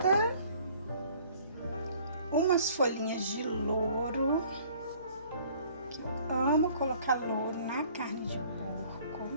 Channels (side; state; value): both; inverted; correlation -0.55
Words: Umas folhinhas de louro, que eu amo colocar louro na carne de porco.